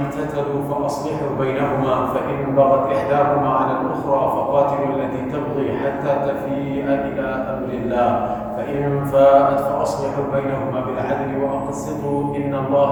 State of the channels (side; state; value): both; identical; correlation 1.00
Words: فأصلحوا بينهما فإن بغت إحداهما على الأخرى فقاتلوا التي تبغي حتى تفيء إلى أمر الله فإن فاءت فأصلحوا بينهما بالعدل وأقسطوا إن الله